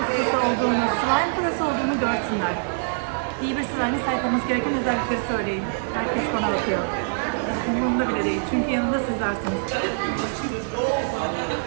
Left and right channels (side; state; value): left; silent; 62 dB below the other